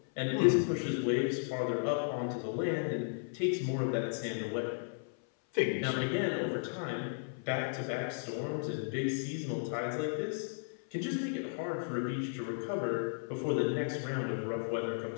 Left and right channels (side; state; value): right; silent; 55 dB below the other